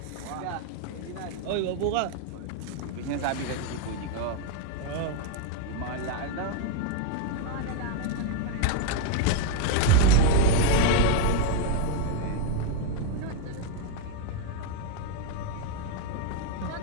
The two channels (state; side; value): different; both; correlation 0.01